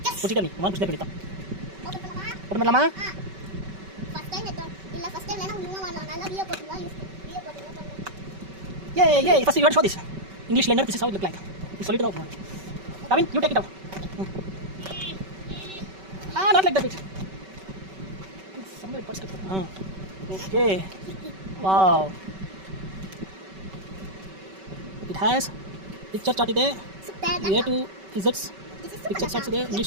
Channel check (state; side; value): late; left; 5.2 ms